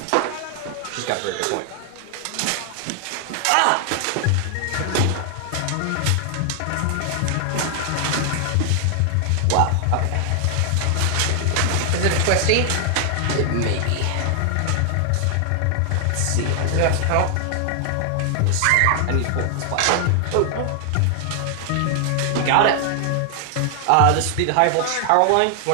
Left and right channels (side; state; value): both; different; correlation 0.00